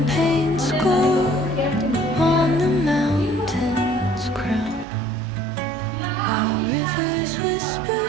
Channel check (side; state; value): left; drops out; at 4.9 s